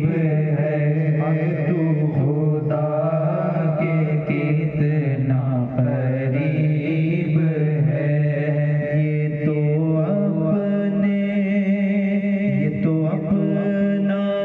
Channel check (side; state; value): both; identical; correlation 1.00